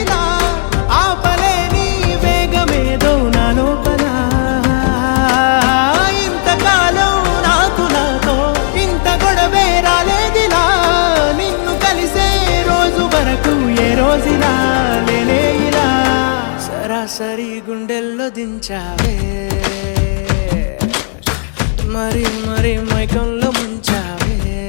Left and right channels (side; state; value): right; silent; digital silence